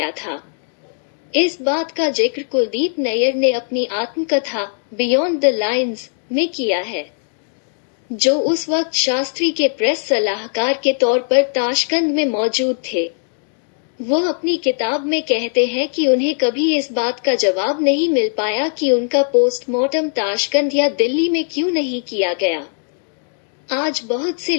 था। इस बात का जिक्र कुलदीप नैयर ने अपनी आत्मकथा बियॉन्ड द लाइन्स में किया है, जो उस वक्त शास्त्री के प्रेस सलाहकार के तौर पर ताशकंद में मौजूद थे। वो अपनी किताब में कहते हैं कि उन्हें कभी इस बात का जवाब नहीं मिल पाया कि उनका पोस्टमार्टम ताशकंद या दिल्ली में क्यों नहीं किया गया। आज बहुत से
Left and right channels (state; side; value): silent; right; 57 dB below the other